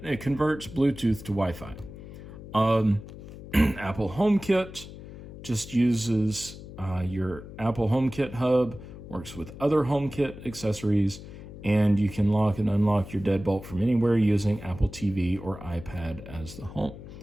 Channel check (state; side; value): noise; left; hum, 14 dB below the sound